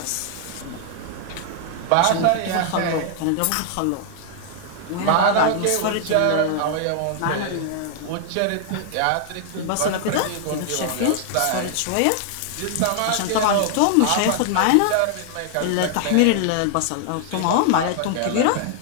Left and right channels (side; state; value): both; different; correlation 0.00